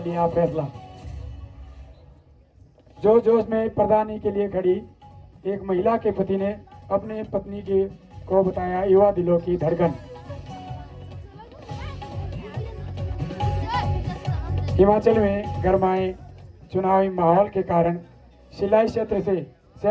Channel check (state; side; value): identical; both; correlation 1.00